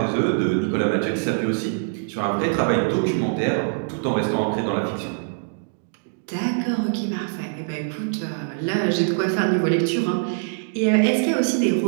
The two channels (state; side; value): silent; left; digital silence